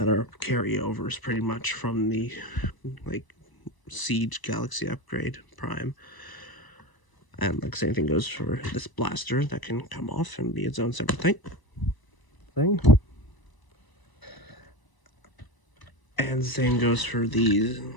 are carryovers pretty much from the, like, Siege Galaxy Upgrade Prime. And, like, same thing goes for this blaster that can come off and be its own separate thing. And same goes for these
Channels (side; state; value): right; late; 1.0 ms